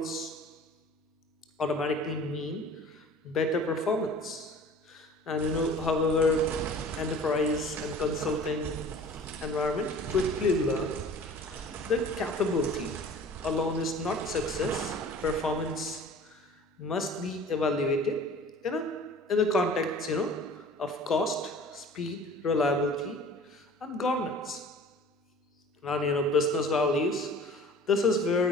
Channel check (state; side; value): normal; both; correlation 0.45